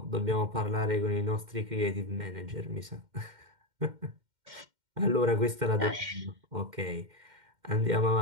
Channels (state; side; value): late; left; 2.1 ms